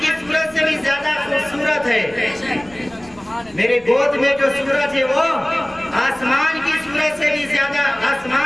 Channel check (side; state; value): right; noise; rumble, 25 dB below the sound